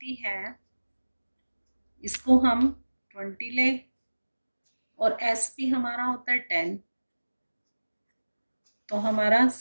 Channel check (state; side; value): inverted; both; correlation -1.00